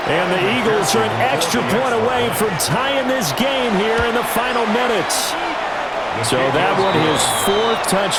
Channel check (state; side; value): identical; both; correlation 1.00